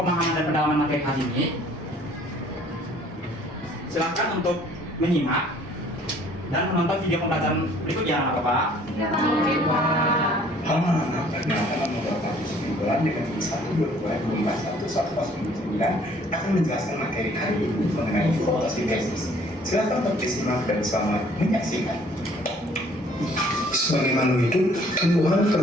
dan pendalaman materi hari ini, silakan untuk menyimak dan menonton video pembelajaran berikut ya, Bapak. Oke, Pak. Anak Perkenalkan nomor 49 dengan 1/2021 akan menjelaskan materi hari ini mengenai fotosintesis. Silakan bersimak dan selamat menyaksikan. Sebagai makhluk hidup, tumbuhan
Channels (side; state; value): both; normal; correlation 0.57